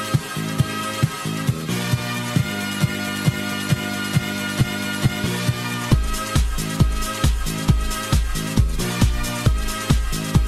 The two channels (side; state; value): both; identical; correlation 1.00